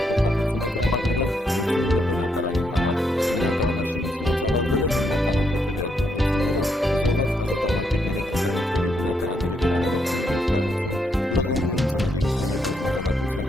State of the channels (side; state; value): both; normal; correlation 0.77